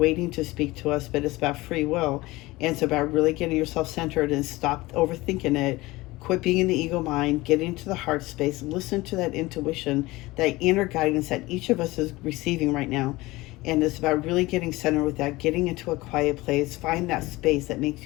to speak to us, but it's about free will. And it's about really getting yourself centered and stop overthinking it. Quit being in the ego mind, get into the heart space, listen to that intuition, that inner guidance that each of us is receiving right now. And it's about really getting centered with that, getting into a quiet place, find that space that makes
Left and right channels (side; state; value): right; quieter; 20.2 dB